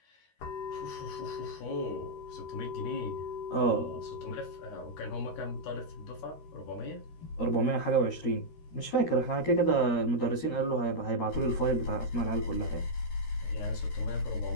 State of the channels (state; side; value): late; right; 13 ms